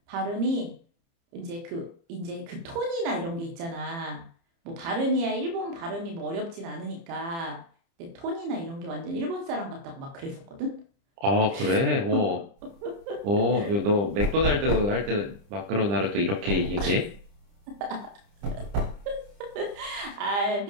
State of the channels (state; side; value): late; left; 30 ms